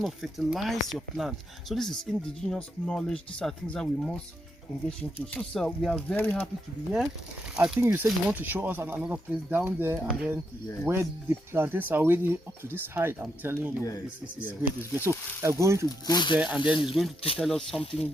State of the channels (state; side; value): normal; both; correlation 0.81